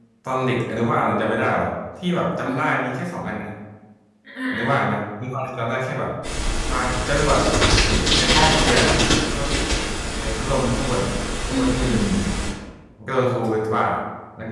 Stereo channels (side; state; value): both; identical; correlation 1.00